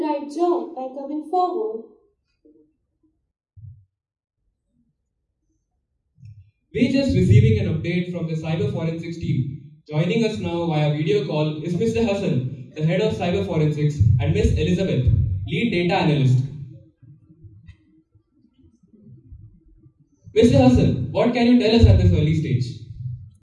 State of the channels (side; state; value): both; identical; correlation 1.00